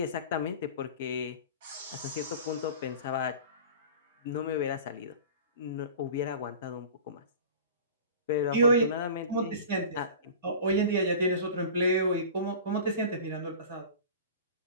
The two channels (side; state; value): both; inverted; correlation -0.38